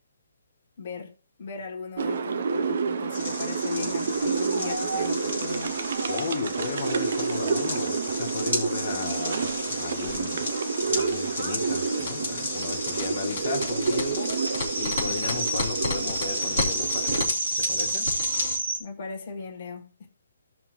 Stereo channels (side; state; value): both; inverted; correlation -0.71